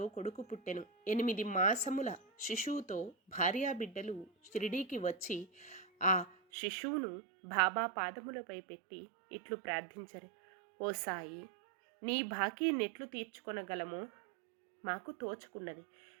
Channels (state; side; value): drops out; left; at 6.4 s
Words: కొడుకు పుట్టెను. 8 మాసముల శిశువుతో భార్యాబిడ్డలు షిరిడీకి వచ్చి ఆ శిశువును బాబా పాదములపై పెట్టి ఇట్లు ప్రార్థించరు. ఓ సాయి, నీ బాకీ నెట్లు తీర్చుకొనగలమో మాకు తోచుకున్నది